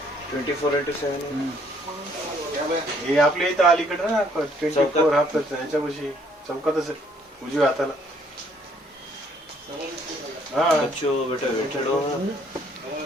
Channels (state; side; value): normal; both; correlation 0.64